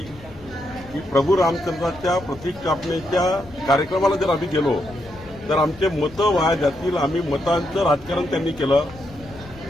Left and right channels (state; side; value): noise; left; rumble, 20 dB below the sound